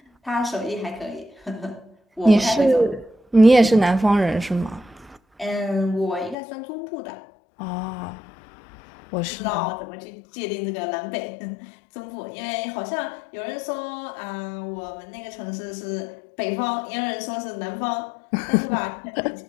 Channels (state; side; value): drops out; right; at 6.4 s